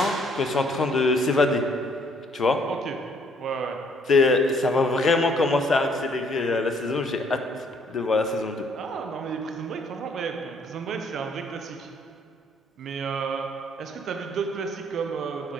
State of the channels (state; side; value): normal; both; correlation 0.65